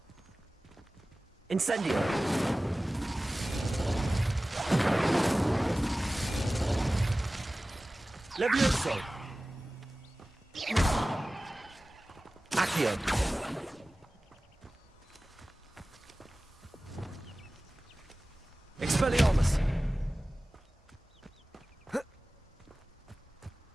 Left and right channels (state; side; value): normal; both; correlation 0.97